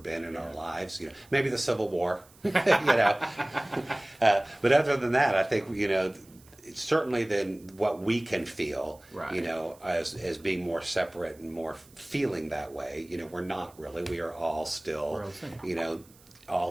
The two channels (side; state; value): right; noise; hiss, 27 dB below the sound